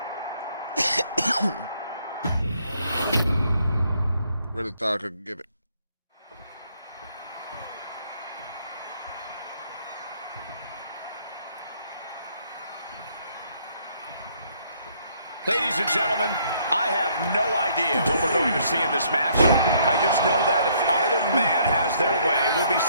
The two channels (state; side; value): inverted; both; correlation -0.67